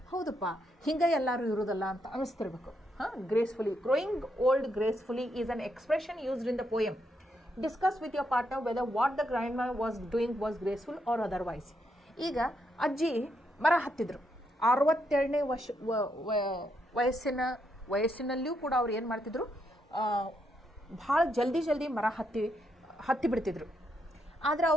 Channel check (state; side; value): normal; both; correlation 0.78